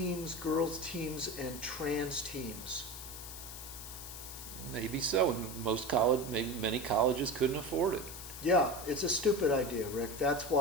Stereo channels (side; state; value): left; noise; hiss, 11 dB below the sound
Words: girls teams, and trans teams. Maybe so. And many colleges couldn't afford it. Yeah, it's a stupid idea, Rick. That's